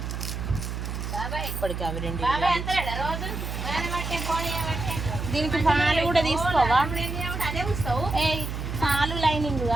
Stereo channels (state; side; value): noise; right; hum, 5 dB below the sound